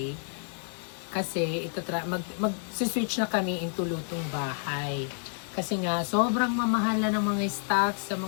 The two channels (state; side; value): silent; right; 58 dB below the other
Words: kasi mag-switch na kami into lutong bahay. Kasi nga, sobrang mamahal na ng mga stocks sa